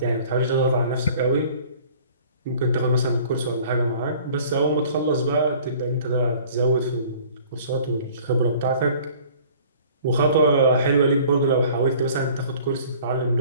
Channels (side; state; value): both; inverted; correlation -0.50